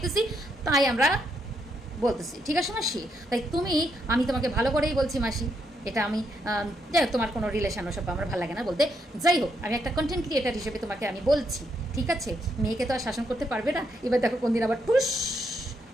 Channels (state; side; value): normal; both; correlation 0.77